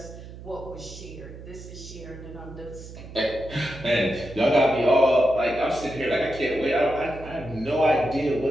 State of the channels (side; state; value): right; noise; hum, 14 dB below the sound